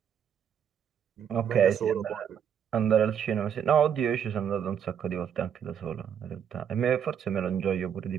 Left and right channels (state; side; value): quieter; left; 8.4 dB